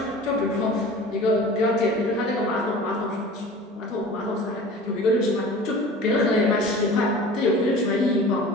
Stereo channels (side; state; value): both; normal; correlation 0.40